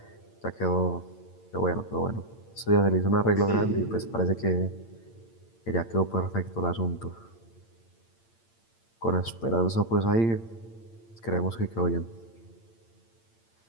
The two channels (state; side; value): late; right; 8.8 ms